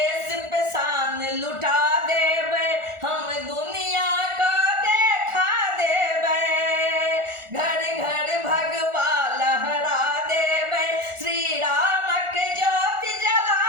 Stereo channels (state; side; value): late; left; 1.4 ms